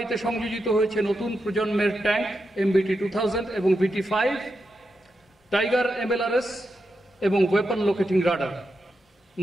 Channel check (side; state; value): both; normal; correlation 0.87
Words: সংযোজিত হয়েছে নতুন প্রজন্মের ট্যাঙ্ক MBT-2000 এবং VT-5, টাইগার MLRS এবং ওয়েপন লোকেটিং রাডার।